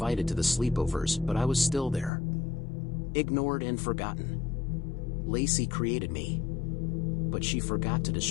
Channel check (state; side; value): drops out; right; at 2.1 s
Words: to the sleepovers, but I was still there. Ignored and forgotten. Lacey created me. But she forgot to